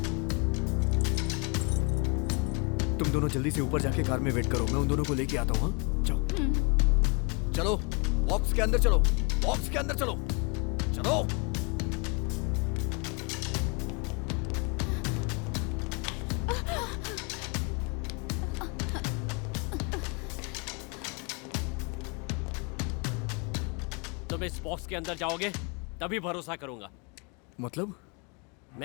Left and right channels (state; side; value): quieter; right; 31.7 dB